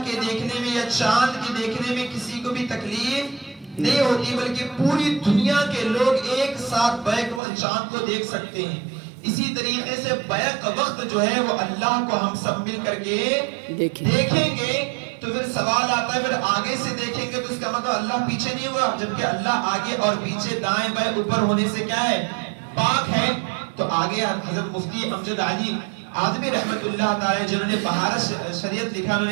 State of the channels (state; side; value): drops out; left; at 7.4 s